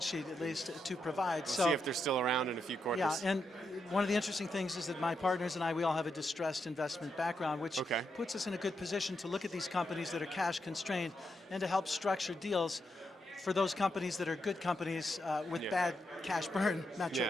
sheet, at least, to provide. We'll see if they're still around in a few quarters. Yeah, and one of the interesting things is that my partners and I, we all have a distressed investment background, which puts us in a good position to look at these companies that are cash constrained and to help structure deals for those companies that are good companies with bad cash burn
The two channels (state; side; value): normal; both; correlation 0.83